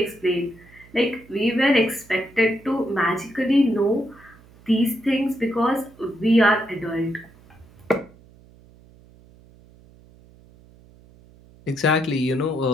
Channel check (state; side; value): noise; right; hum, 26 dB below the sound